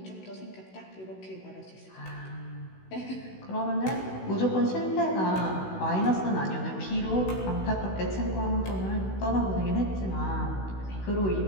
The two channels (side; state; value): right; late; 16 ms